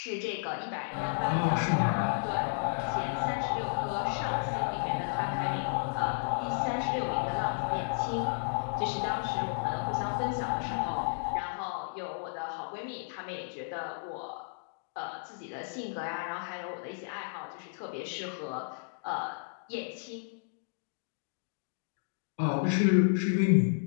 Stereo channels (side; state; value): right; silent; digital silence